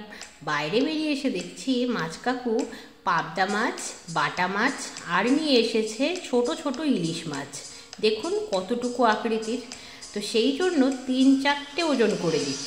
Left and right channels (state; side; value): identical; both; correlation 1.00